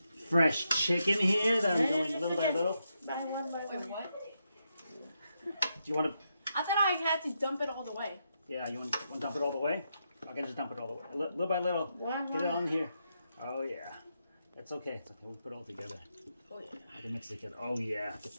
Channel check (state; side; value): inverted; both; correlation -0.83